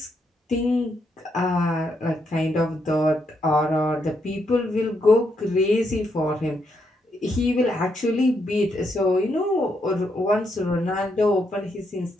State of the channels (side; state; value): both; normal; correlation 0.78